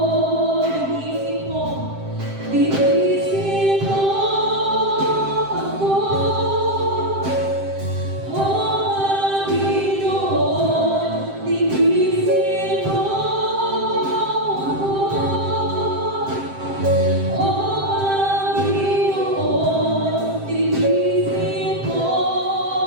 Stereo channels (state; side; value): late; left; 7.6 ms